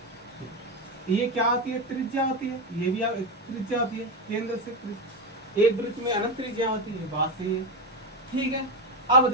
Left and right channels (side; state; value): both; normal; correlation 0.13